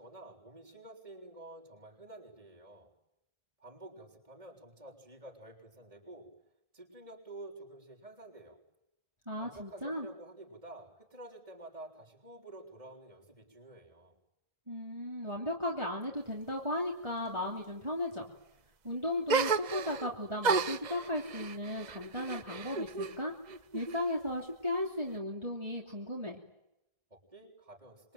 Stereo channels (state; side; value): late; left; 2.0 ms